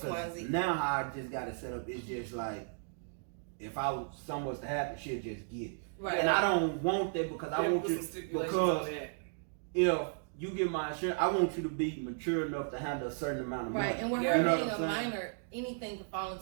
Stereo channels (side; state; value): left; silent; digital silence